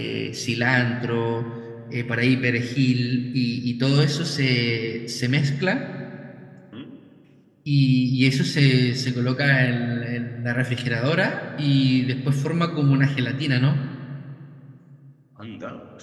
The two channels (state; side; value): identical; both; correlation 1.00